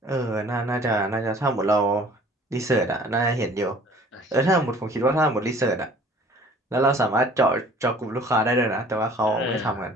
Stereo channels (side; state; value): both; normal; correlation 0.51